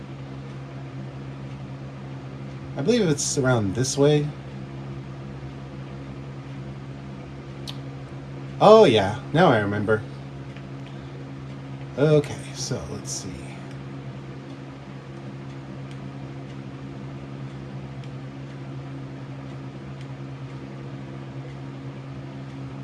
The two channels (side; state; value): both; identical; correlation 1.00